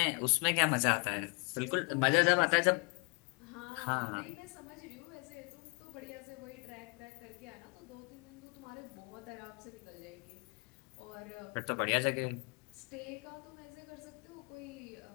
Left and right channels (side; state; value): right; quieter; 31.6 dB